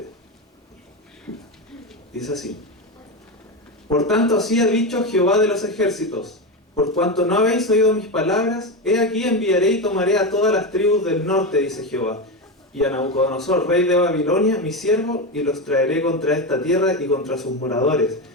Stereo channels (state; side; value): normal; both; correlation 0.15